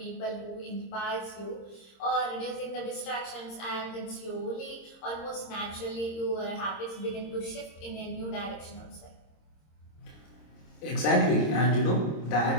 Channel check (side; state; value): right; late; 26 ms